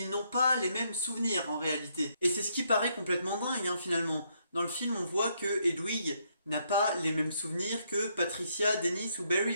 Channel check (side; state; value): both; inverted; correlation -0.74